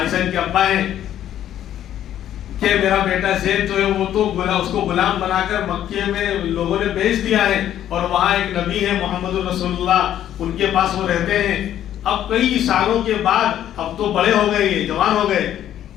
ان کے ابا ہیں، کہ میرا بیٹا زید جو ہے وہ تو اس کو غلام بنا کر مکے میں لوگوں نے بیچ دیا ہے، اور وہاں ایک نبی ہے محمد رسول اللہ، ان کے پاس وہ رہتے ہیں. اب کئی سالوں کے بعد، اب تو بڑے ہو گئے، جوان ہو گئے،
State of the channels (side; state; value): right; quieter; 11.3 dB